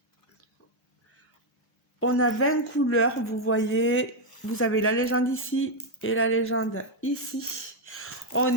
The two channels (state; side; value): normal; both; correlation 0.01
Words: On a 20 couleurs, vous voyez. Vous avez la légende ici et la légende ici.